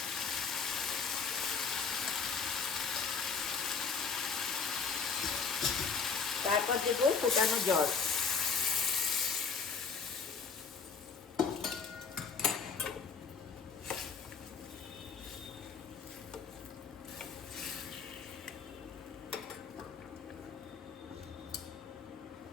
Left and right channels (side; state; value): right; quieter; 5.5 dB